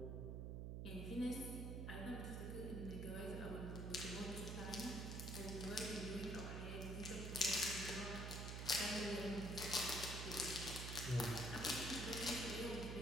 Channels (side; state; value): right; noise; hum, 3 dB below the sound